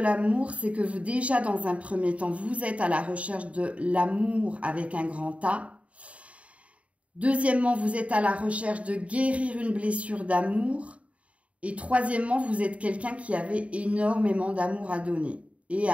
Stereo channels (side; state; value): left; late; 0.065 ms